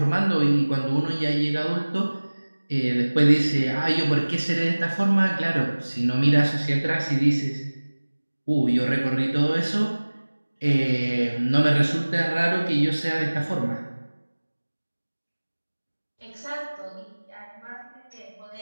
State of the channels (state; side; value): inverted; both; correlation -1.00